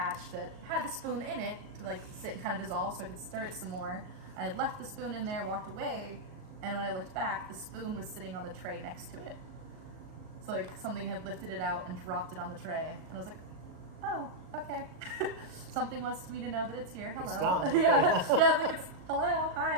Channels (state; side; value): late; left; 38 ms